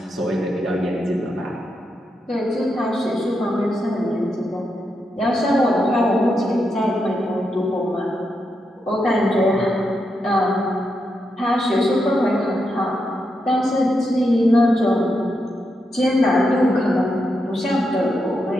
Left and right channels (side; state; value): both; normal; correlation 0.84